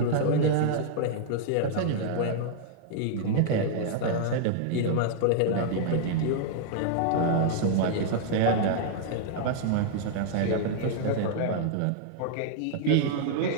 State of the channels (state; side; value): different; both; correlation -0.01